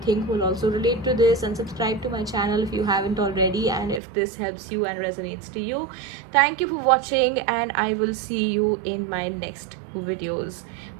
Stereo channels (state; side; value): drops out; left; at 4.0 s